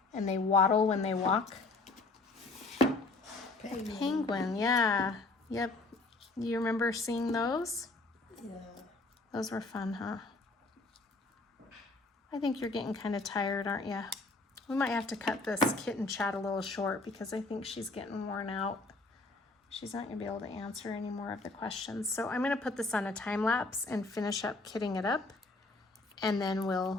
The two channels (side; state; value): right; quieter; 3.4 dB